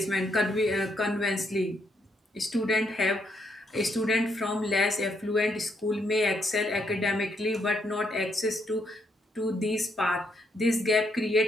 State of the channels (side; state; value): both; normal; correlation 0.76